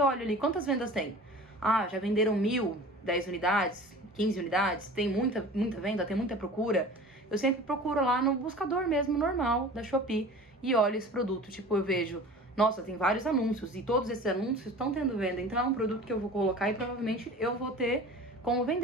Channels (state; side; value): normal; both; correlation 0.40